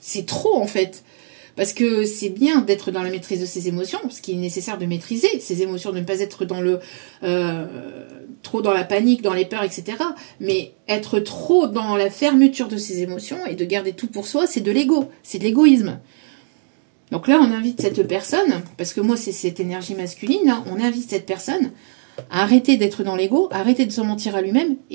trop en fait. Parce que c'est bien d'être dans la maîtrise de ses émotions, ce qui est nécessaire de maîtriser ses émotions, de ne pas être dans trop dans la panique, dans les peurs, etc. Mais être trop dans la fermeture de ses émotions et de garder tout pour soi, c'est de l'ego, c'est de l'égoïsme. Donc là, on invite cette personne, parce que moi, c'est cette énergie masculine, hein, on invite cette personne à arrêter d'être dans l'ego, arrêter de se mentir à lui-même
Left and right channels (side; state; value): left; silent; digital silence